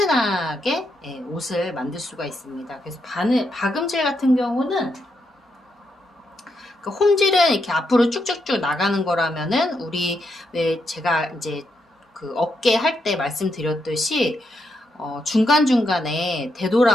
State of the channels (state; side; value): normal; both; correlation 0.81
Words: 옷을 만들 수가 있습니다. 그래서 박음질 같은 경우는 그 홈질은 이렇게 앞으로 쭉쭉쭉 나가는 거라면은 우리 왜 제가 이제 그 어깨 할 때 말씀드렸듯이 중간중간에